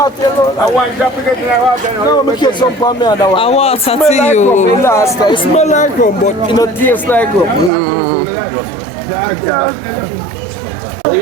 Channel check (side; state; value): left; drops out; at 7.7 s